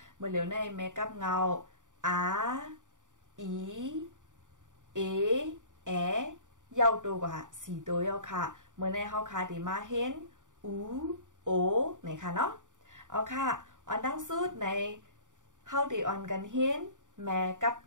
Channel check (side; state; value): left; late; 0.86 ms